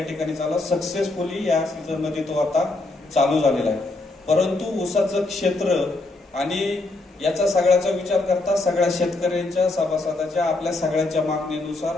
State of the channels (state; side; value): quieter; right; 3.1 dB